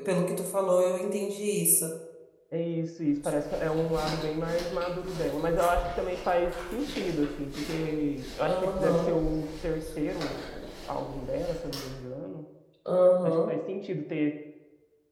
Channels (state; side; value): identical; both; correlation 1.00